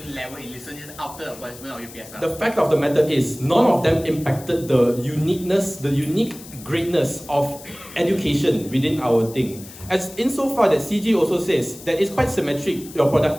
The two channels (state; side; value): noise; left; hiss, 17 dB below the sound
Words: level in listeners after the abolishment of UPSR? The fact of the matter is, none of them impacted the unique greatness of education within our thing. As insofar that CG also says that it's quite symmetric, your